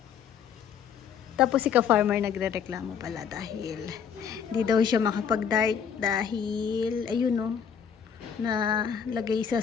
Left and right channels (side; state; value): right; quieter; 7.5 dB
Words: Tapos si ka-farmer nagre-reklamo pala dahil hindi daw siya makapag-dart dahil ayun no, na lagay